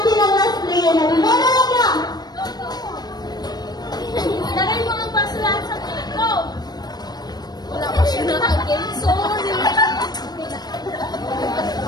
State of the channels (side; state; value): right; late; 0.19 ms